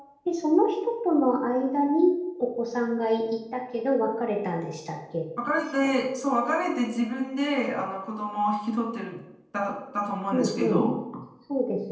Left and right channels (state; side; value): identical; both; correlation 1.00